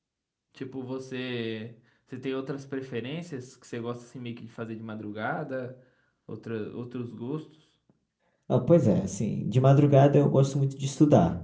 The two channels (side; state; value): both; identical; correlation 1.00